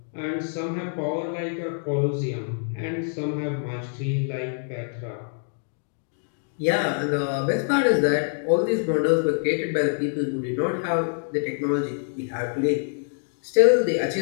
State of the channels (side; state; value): right; silent; 61 dB below the other